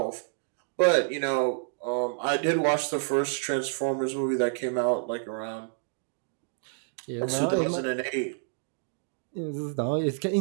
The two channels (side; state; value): left; silent; digital silence